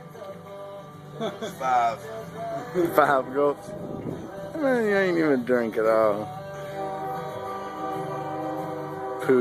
Five. 5 gulps. Man, you ain't even drink at all.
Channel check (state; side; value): identical; both; correlation 1.00